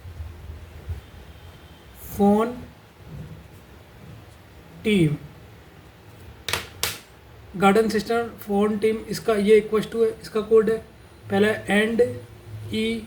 phone team. Garden sister phone team, इसका ये इक्वल टू है, इसका कोड है पहला एंड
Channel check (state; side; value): identical; both; correlation 1.00